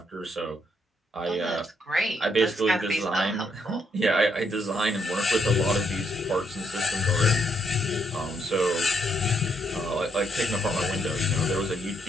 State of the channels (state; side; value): normal; both; correlation 0.75